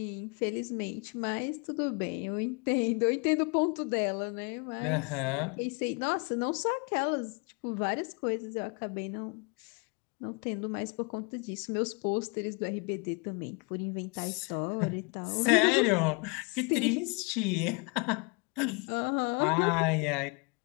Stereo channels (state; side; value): quieter; right; 32.3 dB